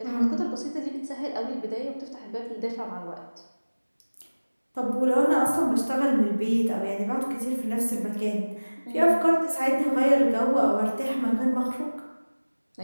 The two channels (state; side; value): inverted; both; correlation -1.00